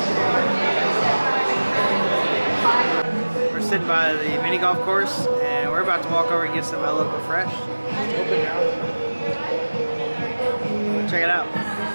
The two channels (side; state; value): both; inverted; correlation -1.00